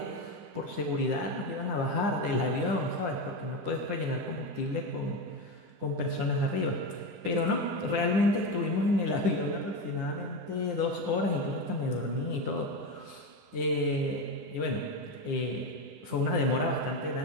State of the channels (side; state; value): left; late; 10 ms